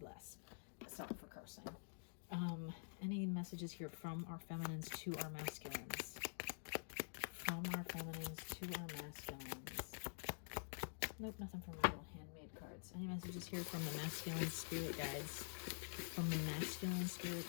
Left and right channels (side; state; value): right; silent; digital silence